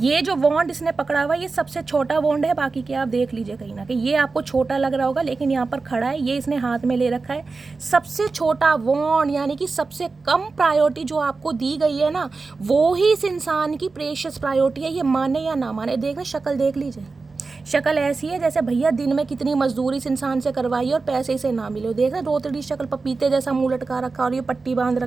जो वॉन्ड इसने पकड़ा हुआ, ये सबसे छोटा वॉन्ड है, बाकी के आप देख लीजिए कहीं ना कहीं। ये आपको छोटा लग रहा होगा, लेकिन यहाँ पर खड़ा है, ये इसने हाथ में ले रखा है, सबसे छोटा वॉन्ड, यानी कि सबसे कम प्रायोरिटी जो आपको दी गई है ना, वो ही इस इंसान की प्रेशियस प्रायोरिटी है। ये माने या ना माने, देखना शक्ल देख लीजिए, शक्ल ऐसी है जैसे भैया दिन में कितनी मजदूरी इस इंसान से करवाई और पैसे इसे ना मिले। देख रहे रोतड़ी शक्ल, पपीते जैसा मुँह लटका रखा, और ये पट्टी बांध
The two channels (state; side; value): quieter; left; 4.1 dB